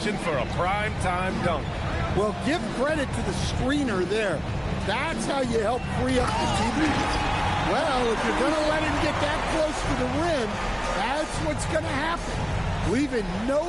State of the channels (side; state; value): both; identical; correlation 1.00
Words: for a prime-time dunk. Well, give credit to the screener there. That's how you help free up the TV. Well, if you're going to let him get that close to the rim, that's what's going to happen. Leaving no